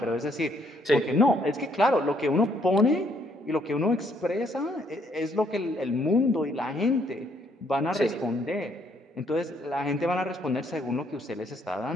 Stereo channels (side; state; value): both; normal; correlation 0.69